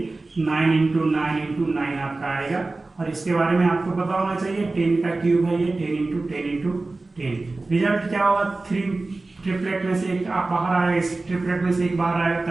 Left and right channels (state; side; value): quieter; left; 3.3 dB